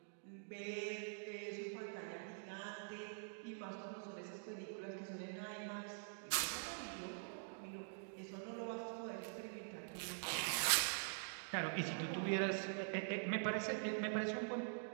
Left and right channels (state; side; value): silent; left; digital silence